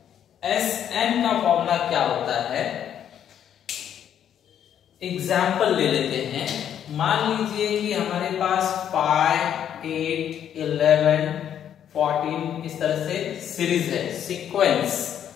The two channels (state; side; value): quieter; right; 9.6 dB